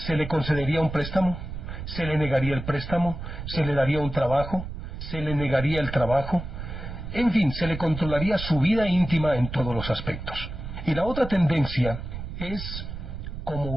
le concedería un préstamo, se le negaría el préstamo, se le daría un trabajo, se le negaría el trabajo, en fin, se le controlaría su vida íntima en todos los aspectos. Y la otra tendencia es,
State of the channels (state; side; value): noise; right; rumble, 8 dB below the sound